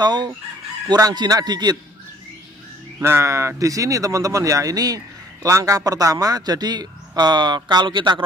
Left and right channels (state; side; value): normal; both; correlation 0.58